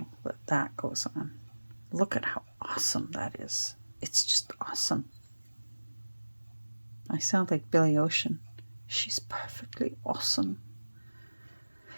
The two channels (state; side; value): inverted; both; correlation -1.00